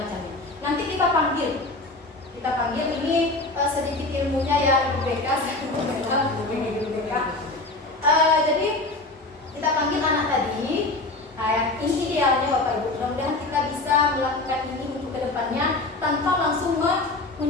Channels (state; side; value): quieter; right; 3.0 dB